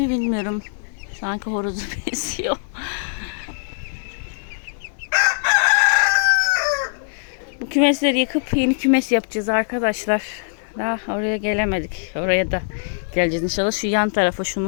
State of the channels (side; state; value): right; silent; digital silence